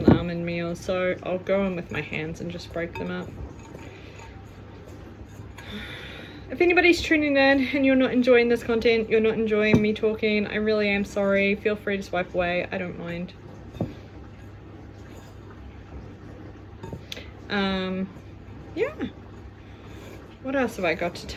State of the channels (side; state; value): both; identical; correlation 1.00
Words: the almond meal, so I'll go in with my hands and just break them up. If anybody's tuning in and you're not enjoying this content, you're not enjoying me talking, I really am sorry. Feel free to swipe away, I don't mind. Yeah. What else have I got to